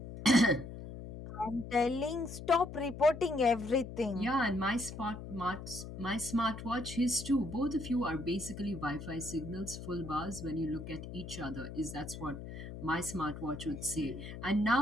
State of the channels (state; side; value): noise; left; hum, 10 dB below the sound